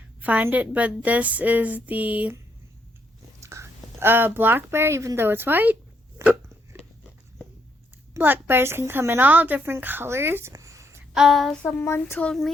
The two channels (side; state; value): both; normal; correlation 0.74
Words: find it. But this is the black bear, even though it's white. Black bears can come in all different colors. Someone told